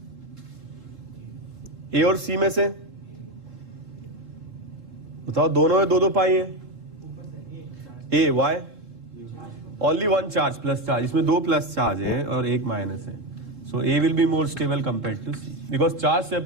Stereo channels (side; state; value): left; late; 3.7 ms